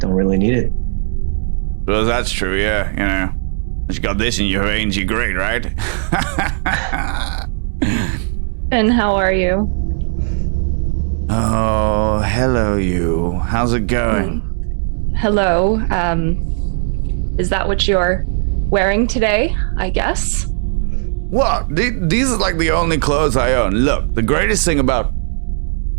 really need it. Well, that's true, yeah, you know. You got this in your veins, you're great, right? And how are you? Oh, hello you. How's it going? Hello. Is that what you're wearing today, I guess? What? These are like the only clothes I own. Look, the greatest thing about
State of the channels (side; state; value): left; silent; 61 dB below the other